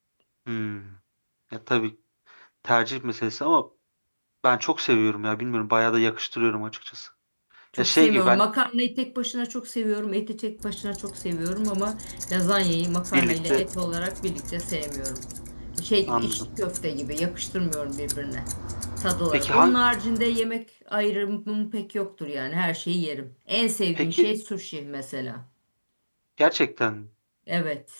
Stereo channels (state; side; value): inverted; both; correlation -1.00